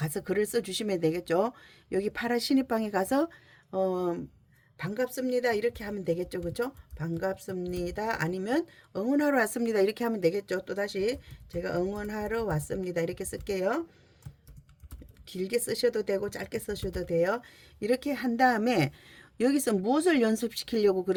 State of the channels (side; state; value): both; identical; correlation 1.00